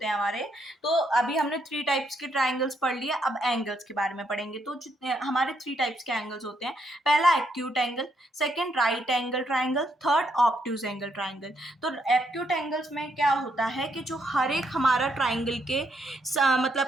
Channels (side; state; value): both; normal; correlation 0.76